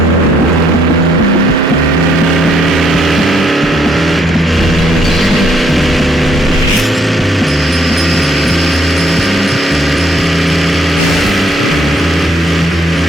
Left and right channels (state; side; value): normal; both; correlation 0.70